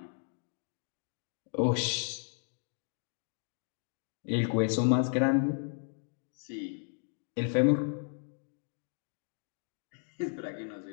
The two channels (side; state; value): right; silent; 55 dB below the other